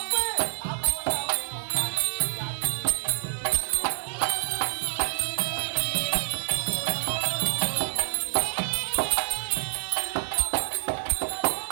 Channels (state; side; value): silent; left; 60 dB below the other